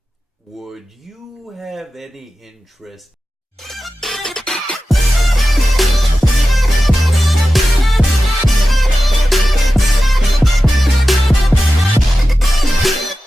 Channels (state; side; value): normal; both; correlation 0.93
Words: Would you have any interest